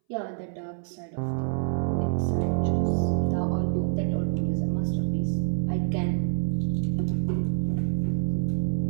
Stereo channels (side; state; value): left; silent; 60 dB below the other